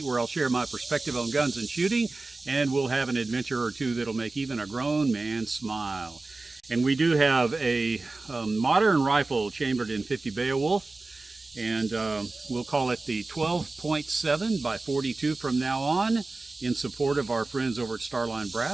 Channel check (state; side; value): quieter; left; 3.4 dB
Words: where I'll share my perspective on guns and shooting, and we'll have an adventure or two that'll make even a grown man smile. And we do have a modern rifle chambered in 50 Beowulf, and we'll call it the 12.7 by 42 from now on, in support of our friends over at Starline